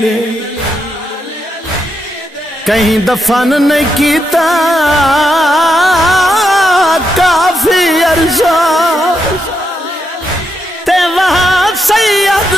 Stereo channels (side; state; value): both; normal; correlation 0.82